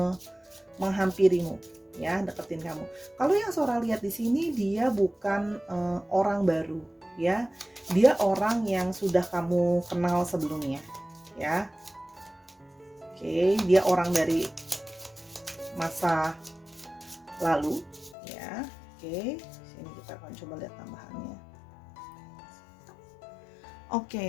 menghampirimu, ya, deketin kamu. Kalau yang Sora lihat di sini, dia bukan orang baru, ya. Dia orang yang sudah kamu kenal sebelumnya, ya. Oke, dia orang dari masa lalu ya. Oke, sini kita akan coba lihat tambahannya.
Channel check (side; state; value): right; drops out; at 18.2 s